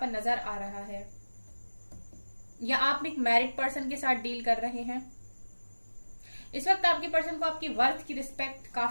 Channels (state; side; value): inverted; both; correlation -1.00